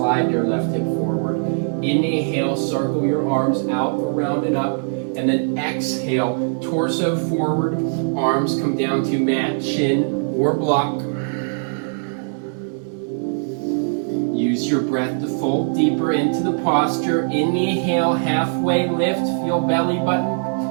your left hip forward. Inhale, circle your arms out, around and up. And then exhale, torso forward, arms come down to mat, chin, or block. Use your breath to fold deeper into the posture. Inhale, halfway lift, feel belly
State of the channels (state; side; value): silent; left; 61 dB below the other